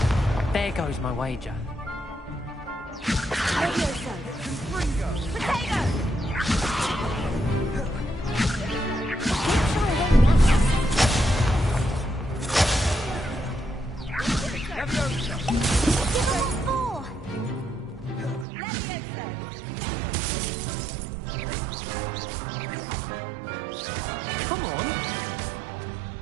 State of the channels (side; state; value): left; drops out; at 18.4 s